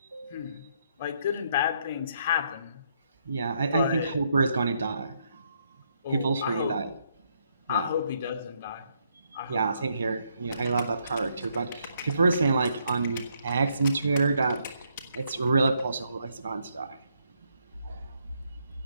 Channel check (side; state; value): both; inverted; correlation -0.74